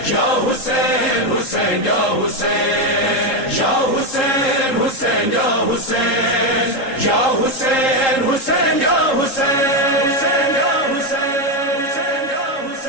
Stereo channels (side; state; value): right; late; 3.7 ms